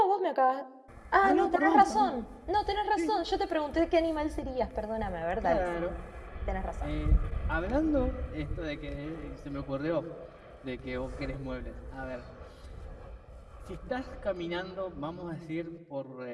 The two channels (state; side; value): identical; both; correlation 1.00